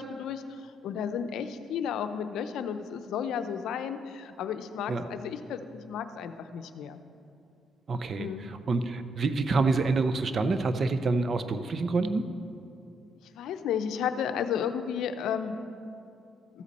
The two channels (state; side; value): normal; both; correlation 0.72